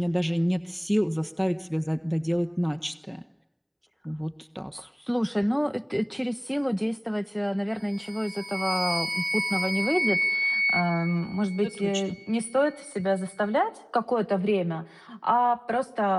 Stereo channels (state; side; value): identical; both; correlation 1.00